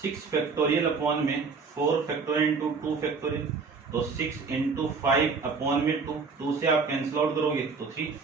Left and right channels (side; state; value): left; quieter; 4.9 dB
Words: फैक्टोरियल अपॉन में 4 फैक्टोरियल इंटू 2 फैक्टोरियल, तो 6 इंटू 5 अपॉन में 2 से आप कैंसिल आउट करोगे तो 3,